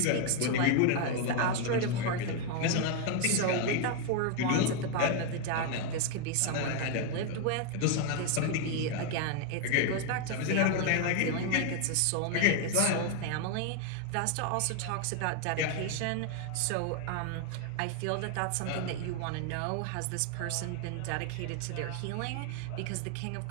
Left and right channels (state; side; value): different; both; correlation 0.01